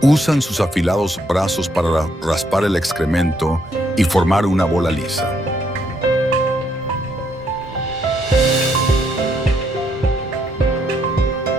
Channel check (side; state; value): both; normal; correlation 0.73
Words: Usan sus afilados brazos para raspar el excremento y formar una bola lisa.